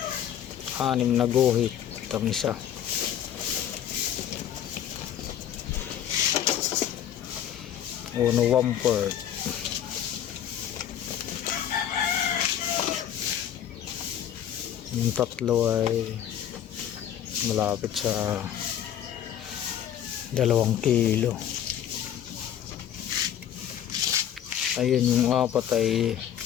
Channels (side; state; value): right; quieter; 10.1 dB